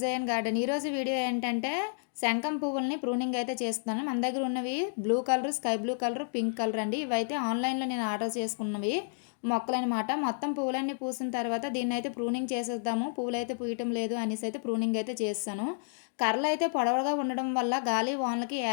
garden. ఈరోజు వీడియో ఏంటంటే శంఖం పువ్వుల్ని ప్రూనింగ్ అయితే చేస్తున్నాను. మన దగ్గర ఉన్నవి blue colour, sky blue colour, pink colour అండి. ఇవైతే ఆన్లైన్లో నేను ఆర్డర్ చేసుకున్నవి మొక్కలనమాట. మొత్తం పువ్వులన్నీ పూసిన తర్వాత దీన్ని అయితే ప్రూనింగ్ చేసేద్దాము, పువ్వులు అయితే పూయటం లేదు అనేసి అయితే ప్రూనింగ్ అయితే చేస్తాను. కర్రలు అయితే పొడవుగా ఉండడం వల్ల గాలి వానలకి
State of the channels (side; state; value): right; silent; digital silence